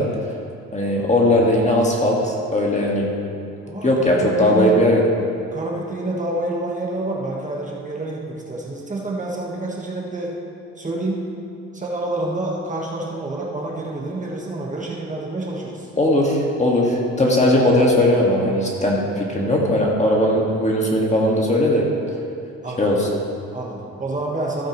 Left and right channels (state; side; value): normal; both; correlation 0.37